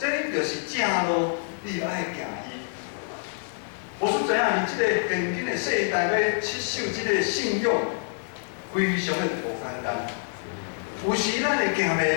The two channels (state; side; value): silent; right; 60 dB below the other